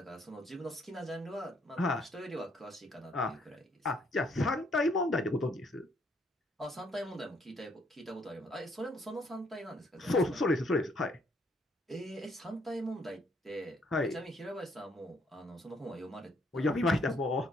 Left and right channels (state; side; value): normal; both; correlation 0.68